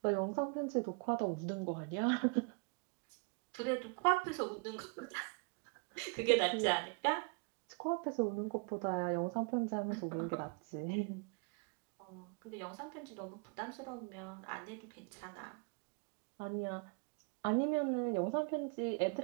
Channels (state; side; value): quieter; left; 34.0 dB